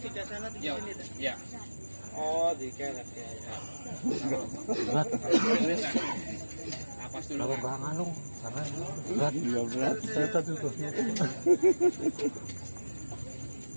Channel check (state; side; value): inverted; both; correlation -1.00